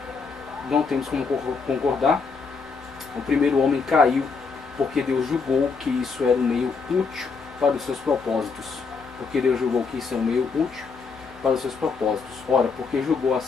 não temos como concordar. O primeiro homem caiu porque Deus julgou que isso era um meio útil para os seus propósitos. Porque Deus julgou que isso é um meio útil para os seus propósitos. Ora, porque julgou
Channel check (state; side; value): quieter; right; 4.9 dB